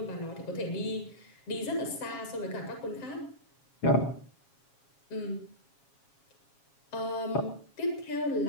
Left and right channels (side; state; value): right; late; 7.3 ms